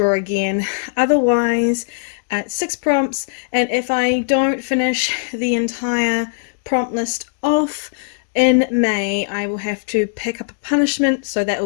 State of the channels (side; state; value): right; silent; 67 dB below the other